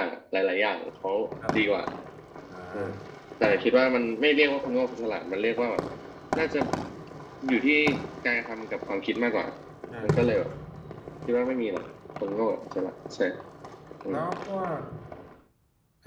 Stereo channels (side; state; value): both; identical; correlation 1.00